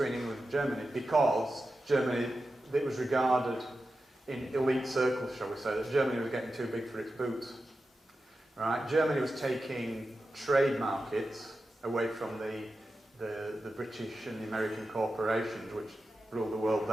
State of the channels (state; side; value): normal; both; correlation 0.92